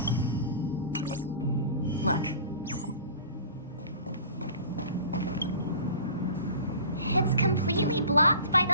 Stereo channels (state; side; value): inverted; both; correlation -0.41